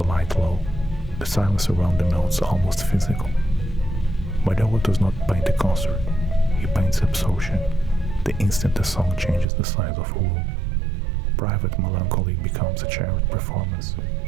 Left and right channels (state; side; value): drops out; left; at 9.5 s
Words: light low, the silence around the notes almost physical. Malhoa does not paint a concert, he paints absorption, the instant a song changes the size of a room. Private melancholy becomes a shared performance,